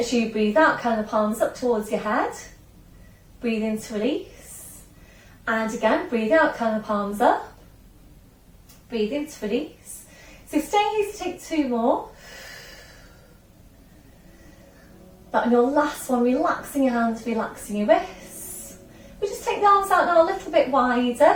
you breathe out, kind of palms up towards your head. Breathe in to release. And again, breathe out, kind of palms up. Breathe in to release. So stay here to take two more. That on your last one, relaxing your hands, relaxing your wrists. We just take the arms out now a little bit wider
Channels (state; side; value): identical; both; correlation 1.00